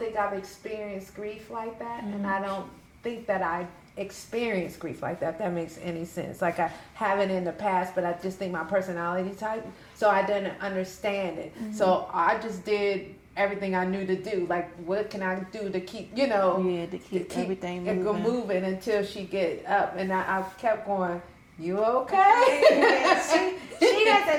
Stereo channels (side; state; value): both; identical; correlation 1.00